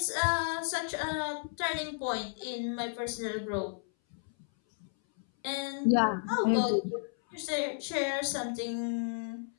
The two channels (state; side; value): silent; right; 56 dB below the other